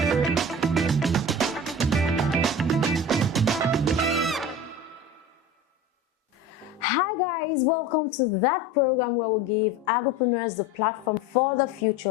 Hi guys, welcome to that program where we give agripreneurs the platform for the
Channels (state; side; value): normal; both; correlation 0.34